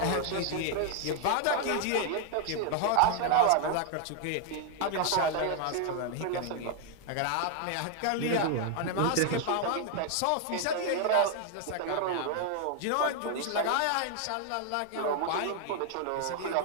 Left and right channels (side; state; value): both; different; correlation 0.00